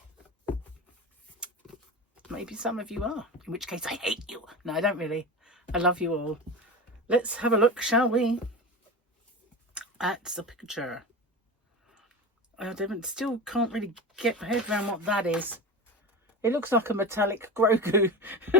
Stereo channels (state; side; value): normal; both; correlation 0.26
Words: Maybe some of you are, in which case I hate you. No, I don't really. I love you all. Let's have a look, shall we, at the picture. I still can't really get my head around what that is. It looks like a metallic Grogu.